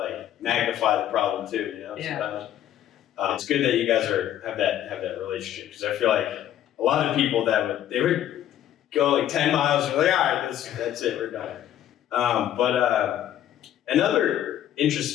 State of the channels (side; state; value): right; quieter; 11.5 dB